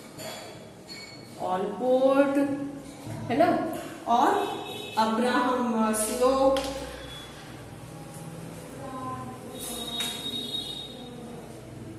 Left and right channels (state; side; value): identical; both; correlation 1.00